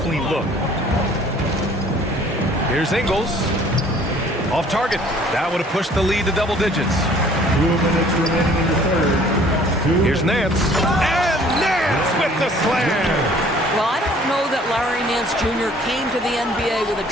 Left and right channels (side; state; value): both; normal; correlation 0.55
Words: look. Here's Ingles. Off target. That would have pushed the lead to double digits. 2 minutes remaining in the third. Here's Nance. And Nance with the slam. Well, I don't know that Larry Nance Jr. came to the NBA with a